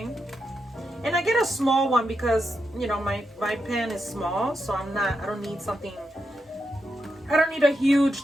And I get a small one because, you know, my pan is small, so I don't need a huge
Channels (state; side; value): normal; both; correlation 0.85